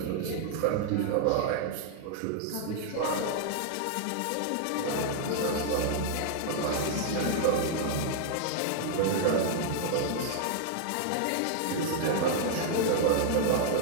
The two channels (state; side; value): different; both; correlation 0.00